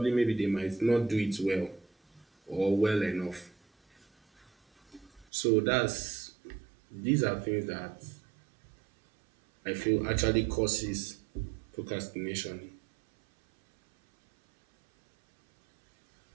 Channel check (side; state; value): left; drops out; at 5.2 s